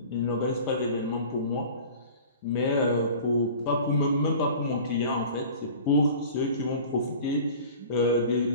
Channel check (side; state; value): both; inverted; correlation -0.42